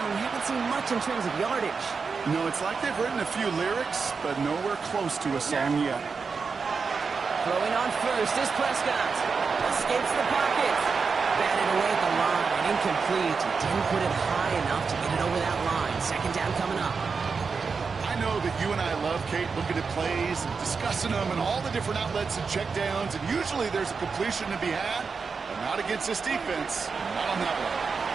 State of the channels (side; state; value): left; quieter; 5.1 dB